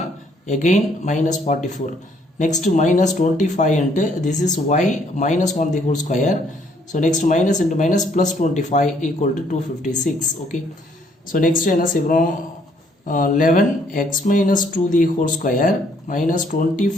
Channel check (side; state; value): both; normal; correlation 0.66